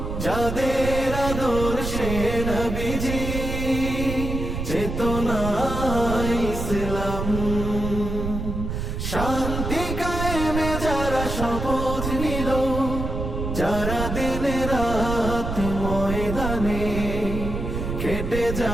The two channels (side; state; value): right; noise; rumble, 4 dB below the sound